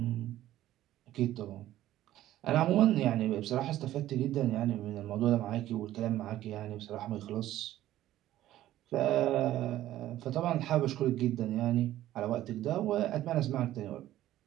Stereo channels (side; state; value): left; quieter; 13.8 dB